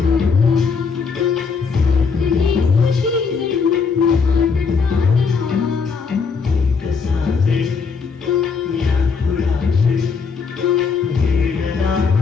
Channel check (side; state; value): right; quieter; 5.3 dB